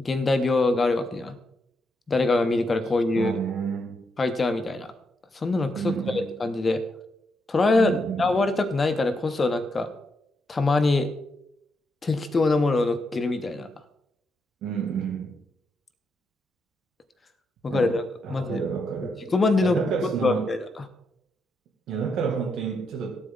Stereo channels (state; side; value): normal; both; correlation 0.81